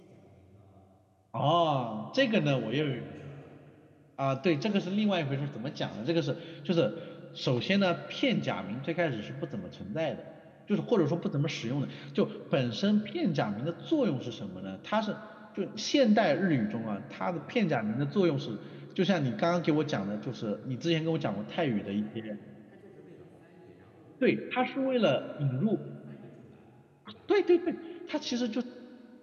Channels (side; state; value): both; identical; correlation 1.00